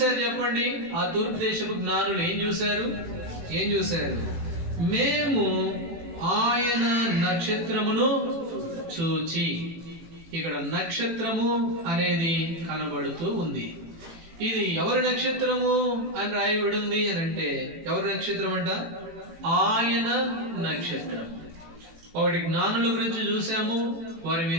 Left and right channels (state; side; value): late; left; 18 ms